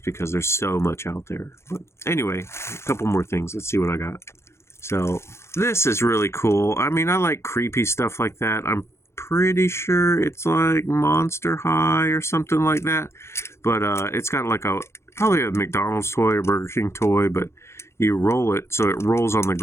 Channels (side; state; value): right; late; 0.13 ms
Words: because there's so much out there. But anyway, a couple more things. Let's see what I got. So this is really cool. I mean, I like creepy stuff like that. I'm pretty sure it's like Monster High or something like that. But it's got like probably a McDonald's toy or Burger King toy, but you roll it so it rolls on the